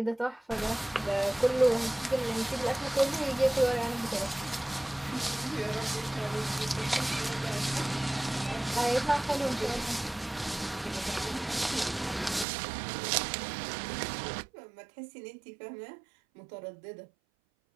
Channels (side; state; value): left; drops out; at 12.5 s